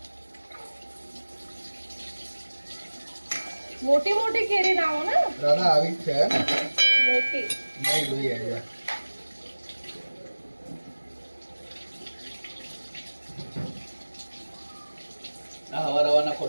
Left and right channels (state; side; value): inverted; both; correlation -1.00